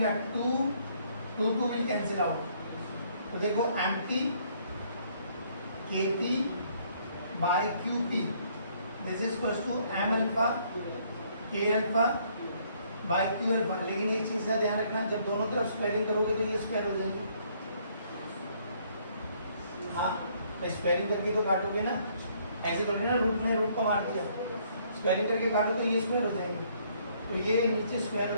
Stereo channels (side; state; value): both; inverted; correlation -0.65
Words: 2 विल कैंसिल आउट. तो देखो empty kp by qp this is equals to m alpha k alpha by q alpha. लेकिन एक चीज का ध्यान रखना, जब दोनों तरफ स्क्वायरिंग करोगे तो ये स्क्वायर हो जाएगी. हाँ, स्क्वायरिंग करके तो काटोगे ना, ऐसे करोगे ना, रूट को मार दिया, स्क्वायरिंग करके काटो तो ये स्क्वायर हो जाएगी. तो ये नीचे स्क्वायर